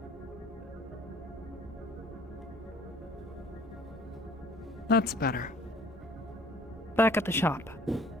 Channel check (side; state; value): both; normal; correlation 0.53